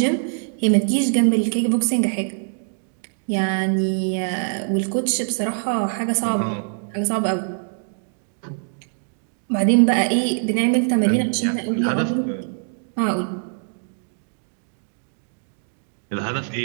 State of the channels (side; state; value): left; silent; digital silence